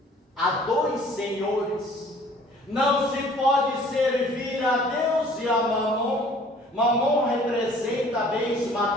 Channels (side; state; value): both; normal; correlation 0.53